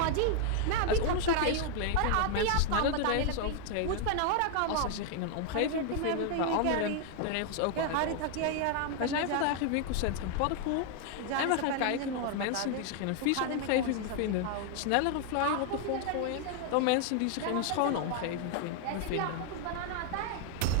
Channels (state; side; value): different; both; correlation 0.00